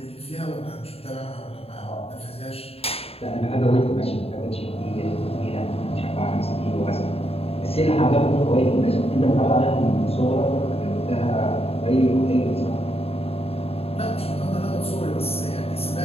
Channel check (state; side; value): late; right; 0.29 ms